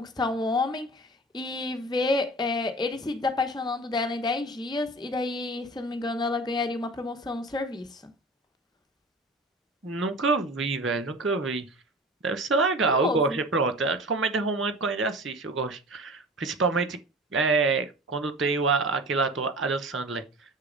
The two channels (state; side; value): normal; both; correlation 0.38